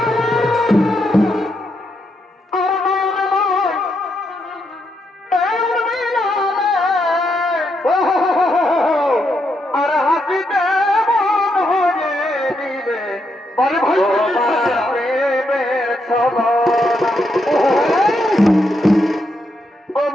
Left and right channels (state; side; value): normal; both; correlation 0.80